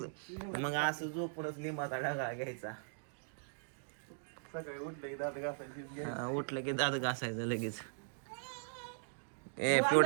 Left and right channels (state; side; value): silent; left; digital silence